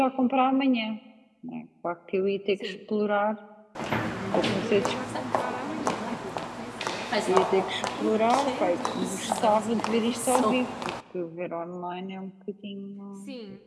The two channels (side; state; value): both; identical; correlation 1.00